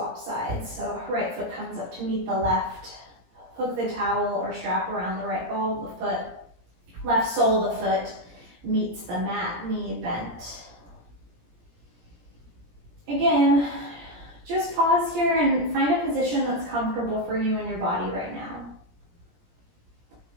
sides. So right foot comes up to meet the left. Hook the towel or strap around the right ball of the foot. Left sole of the foot meets the mat, knee bent. Again, just pause here and find a position that's comfortable for you and your body right now.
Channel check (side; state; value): left; late; 17 ms